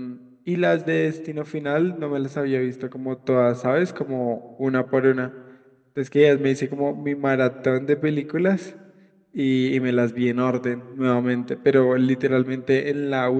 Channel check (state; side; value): identical; both; correlation 1.00